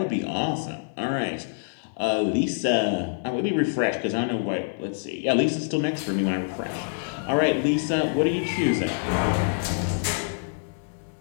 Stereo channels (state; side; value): silent; right; digital silence